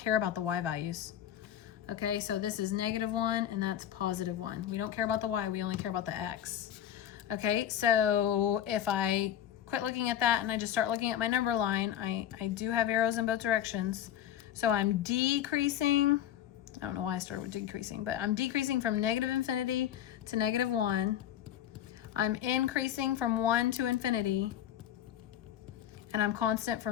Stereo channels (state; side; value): quieter; right; 10.8 dB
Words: about the y values. Okay, so this is -1 and that's +1. We don't care about the y, we only care about the x. Okay, so if I quit looking at that and I just start looking at my number line, I do have arrows in both directions. So I'm decreasing, I don't know why I started with decreasing, but I'm decreasing from -infinity to -1. I'm increasing from 1 to infinity. And I'm constant